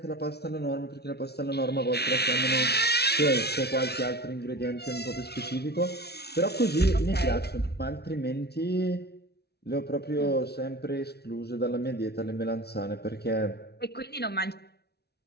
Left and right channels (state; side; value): late; right; 0.48 ms